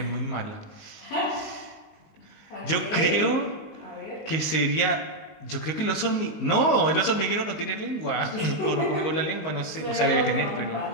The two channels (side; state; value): right; late; 19 ms